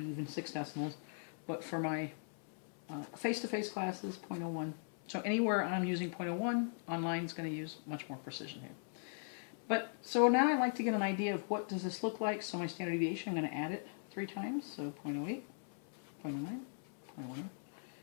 even 6 decimals. But for my face-to-face classes, 0.01. So anywhere I'm using 0.01, online is going to use much more precision here. But so now I like to get an idea of what does this look like. So my standard deviation, I'm going to add it 3 times. So 0.08, 0.09, 0.01,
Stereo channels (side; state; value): right; silent; 51 dB below the other